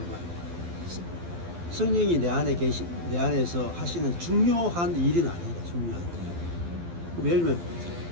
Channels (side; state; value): left; late; 12 ms